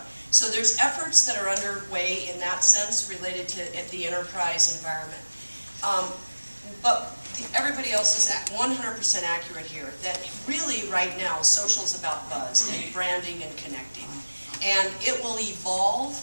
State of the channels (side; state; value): both; inverted; correlation -1.00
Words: So there's efforts that are underway in that sense related to the enterprise environment. But everybody else is 100% accurate here, that really right now social is about buzz and branding and connecting. And it will evolve